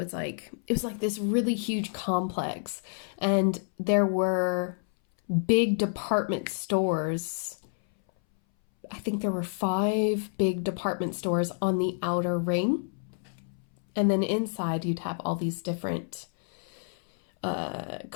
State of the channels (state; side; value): silent; right; 59 dB below the other